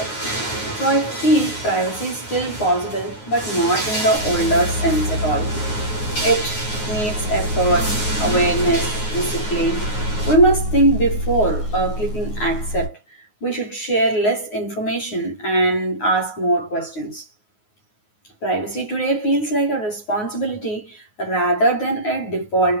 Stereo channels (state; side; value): late; right; 9.5 ms